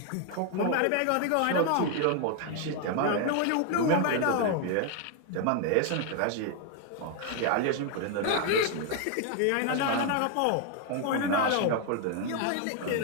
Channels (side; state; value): both; different; correlation 0.00